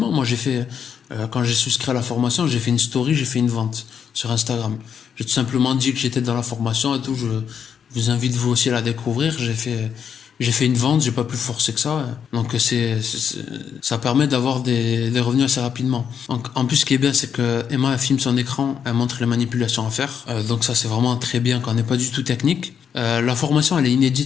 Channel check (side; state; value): right; quieter; 7.6 dB